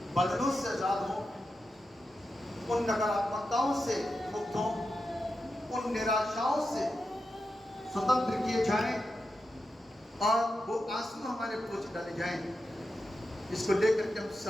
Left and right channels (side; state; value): both; normal; correlation 0.89